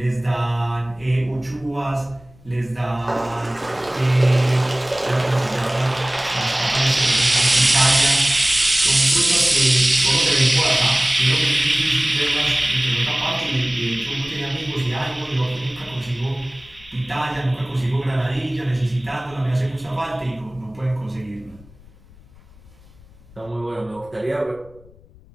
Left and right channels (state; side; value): noise; left; rumble, 25 dB below the sound